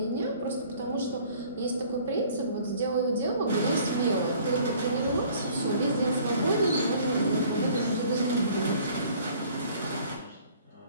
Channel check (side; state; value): both; inverted; correlation -0.54